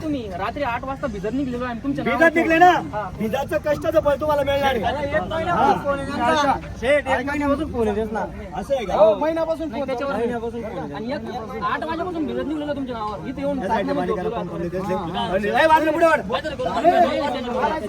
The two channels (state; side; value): identical; both; correlation 1.00